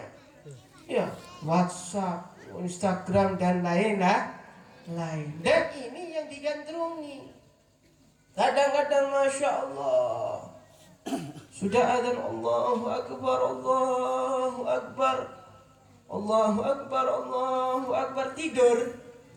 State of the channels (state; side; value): identical; both; correlation 1.00